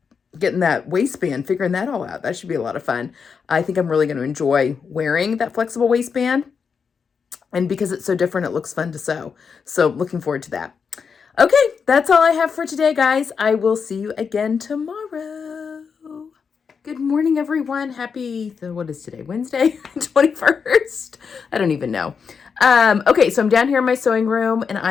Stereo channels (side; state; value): right; quieter; 6.0 dB